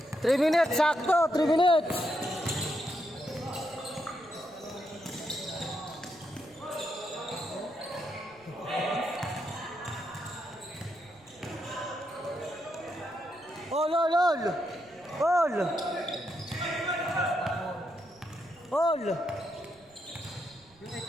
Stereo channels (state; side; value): noise; right; rumble, 30 dB below the sound